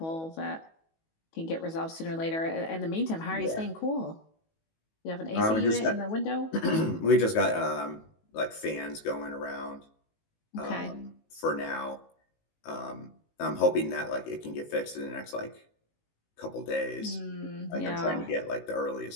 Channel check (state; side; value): late; right; 19 ms